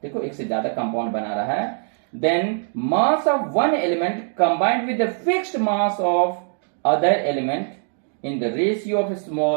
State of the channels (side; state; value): left; silent; 63 dB below the other